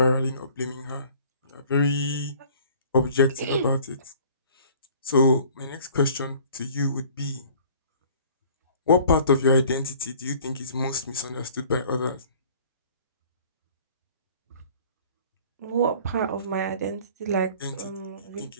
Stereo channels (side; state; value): both; inverted; correlation -0.51